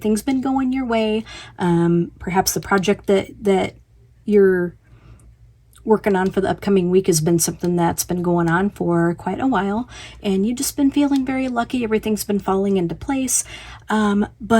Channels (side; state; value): both; identical; correlation 1.00